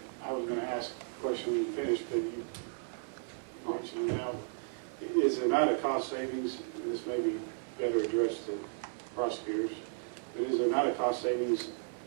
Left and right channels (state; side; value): silent; left; 55 dB below the other